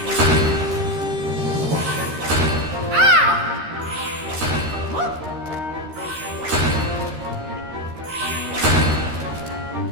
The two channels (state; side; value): late; left; 13 ms